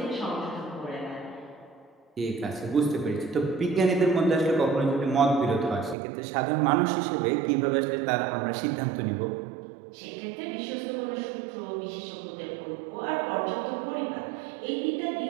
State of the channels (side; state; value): left; drops out; at 6.0 s